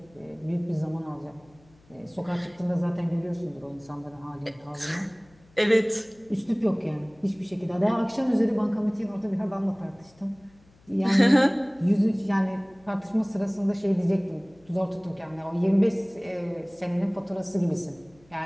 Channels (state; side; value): noise; left; hum, 29 dB below the sound